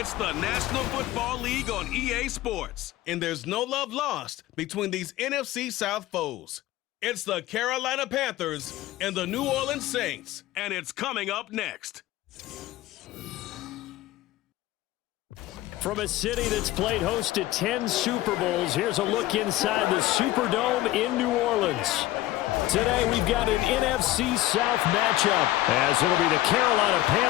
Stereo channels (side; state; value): right; quieter; 16.0 dB